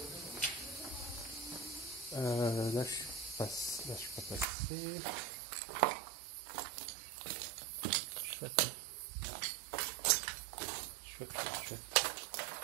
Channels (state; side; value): drops out; left; at 4.5 s